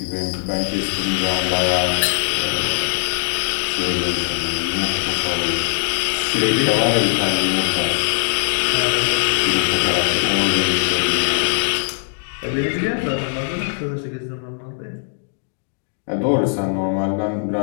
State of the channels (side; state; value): right; silent; digital silence